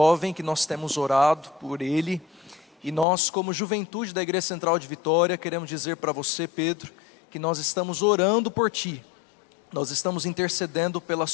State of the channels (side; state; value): right; drops out; at 3.1 s